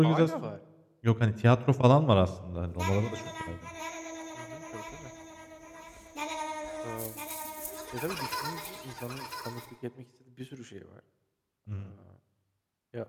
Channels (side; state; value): both; identical; correlation 1.00